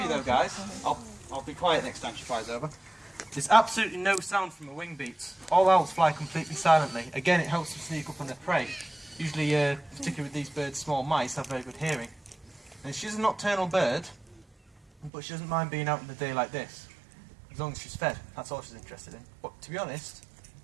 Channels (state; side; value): drops out; left; at 15.1 s